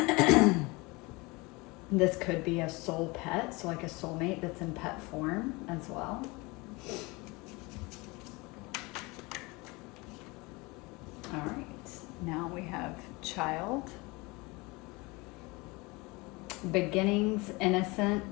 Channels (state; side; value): quieter; right; 25.0 dB